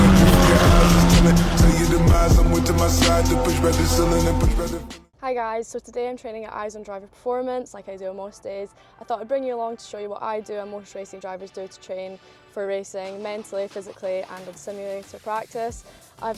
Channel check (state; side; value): identical; both; correlation 1.00